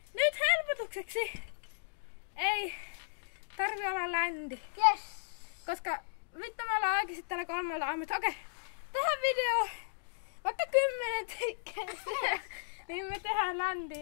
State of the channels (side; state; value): right; silent; digital silence